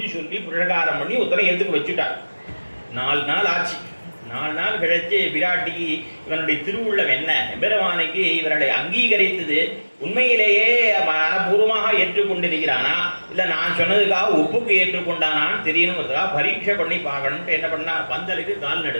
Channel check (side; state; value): both; inverted; correlation -1.00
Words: சொல்லி புரகாரம் பண்ணி ஒருத்தரை எதுக்கு வச்சுட்டார். 4 நாள் ஆச்சு. 4 நாள் கழிச்சு பிராட்டிக்கு இவனுடைய திருவுள்ளம் என்ன, எம்பெருமானுக்கு இவர்களை அங்கீகரித்தது உண்மையிலேயே மனப்பூர்வமாக ஏற்றுக்கொண்டிருக்கிறானா இல்லை நான் சொன்னதுக்காக ஒப்புக்கு ஏற்றுக்கொண்டானான்னு தெரியணுங்கிறதுக்காக பரீட்சை பண்ணி பார்க்கணும்ட்டு என்ன பண்ணா, பந்தலுக்கு கால்